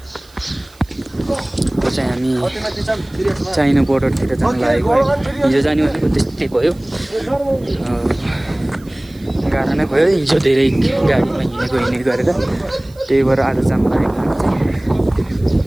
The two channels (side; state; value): right; noise; hiss, 27 dB below the sound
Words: चाहिँ हामी चाइना बोर्डरतिर जान लागेको है। हिजो जाने भनेको त्यस्तै भयो, गाह्रो नै भयो। हिजो धेरै गाडीमा हिँडेको गरेर त्यही भएर आज जान लागेको हामी चाहिँ।